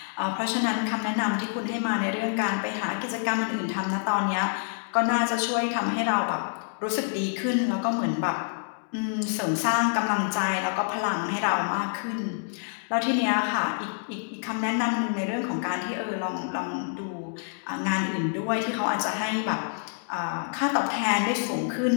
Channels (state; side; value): silent; right; digital silence